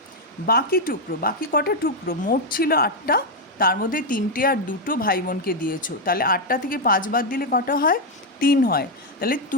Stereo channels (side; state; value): both; normal; correlation 0.02